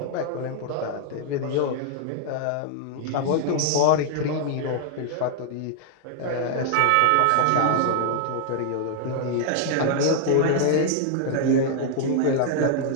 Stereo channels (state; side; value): different; both; correlation -0.01